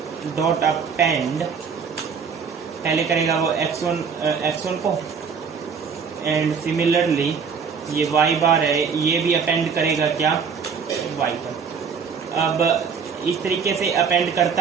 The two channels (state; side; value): quieter; left; 6.1 dB